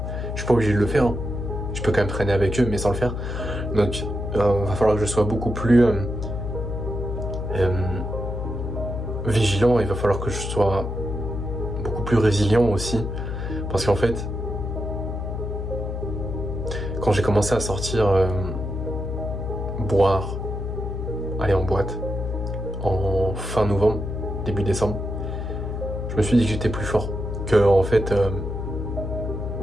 je suis pas obligé de le faire, hein. Je peux quand même traîner avec eux mais sans le faire. Donc va falloir que je sois beaucoup plus vigilant, il va falloir que je sois beaucoup plus résilient aussi. Parce qu'en fait, quand j'ai commencé à sortir boire, aller en boîte en fin novembre, début décembre, je me suis dit que j'étais plus fort, que en fait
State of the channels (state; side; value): noise; left; hum, 4 dB below the sound